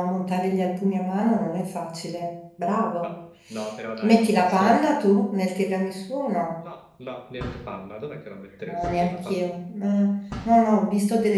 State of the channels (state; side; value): identical; both; correlation 1.00